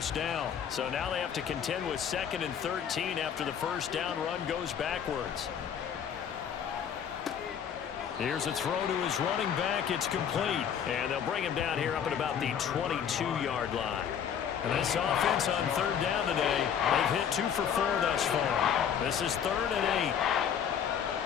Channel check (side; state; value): right; quieter; 8.3 dB